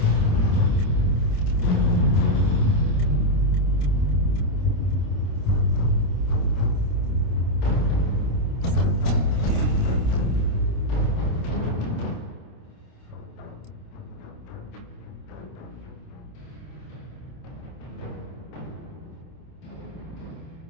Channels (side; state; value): right; late; 27 ms